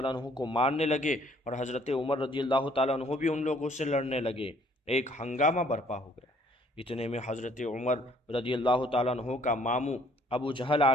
عنہ کو مارنے لگے، اور حضرت عمر رضی اللہ تعالیٰ عنہ بھی ان لوگوں سے لڑنے لگے۔ ایک ہنگامہ برپا ہو گیا۔ اتنے میں حضرت عمر رضی اللہ تعالیٰ عنہ کا ماموں ابو جہل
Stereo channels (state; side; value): normal; both; correlation 0.61